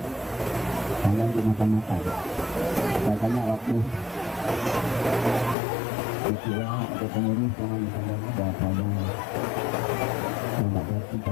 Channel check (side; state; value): right; drops out; at 5.6 s